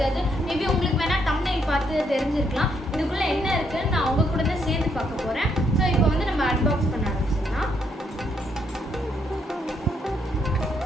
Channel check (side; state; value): both; normal; correlation 0.74